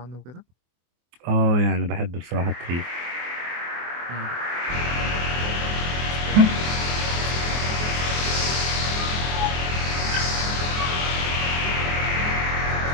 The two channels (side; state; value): left; late; 24 ms